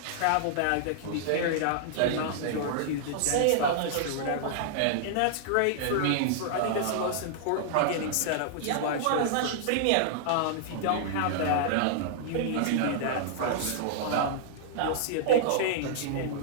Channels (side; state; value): both; different; correlation -0.01